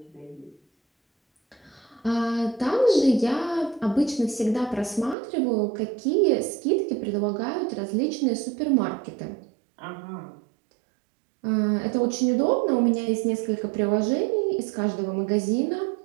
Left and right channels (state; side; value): drops out; left; at 5.2 s